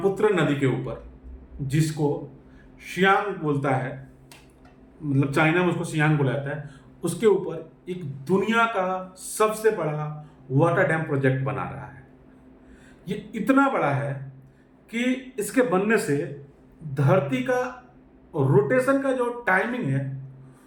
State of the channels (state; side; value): identical; both; correlation 1.00